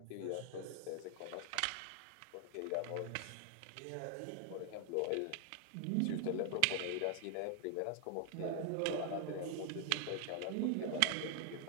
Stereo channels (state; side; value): different; both; correlation 0.00